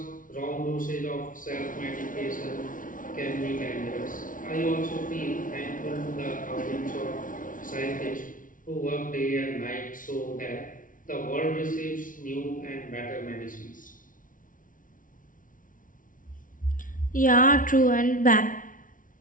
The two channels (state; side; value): late; right; 0.38 ms